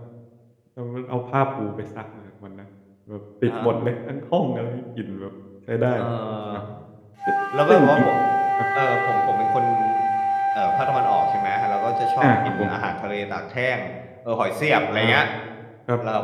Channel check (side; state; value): both; identical; correlation 1.00